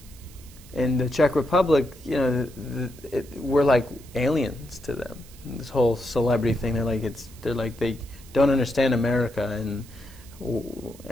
in the Czech Republic, you know, we're like aliens to them. This whole celebrity thing, they're like they don't understand America,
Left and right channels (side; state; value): right; noise; hiss, 22 dB below the sound